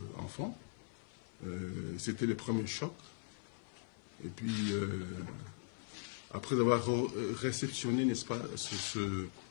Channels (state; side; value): silent; right; 51 dB below the other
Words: enfant, c'était le premier choc. Et puis, après avoir réceptionné, n'est-ce pas, ce